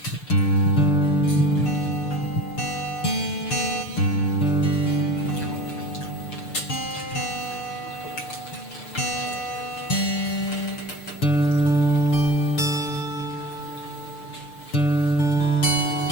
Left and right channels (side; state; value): right; late; 6.6 ms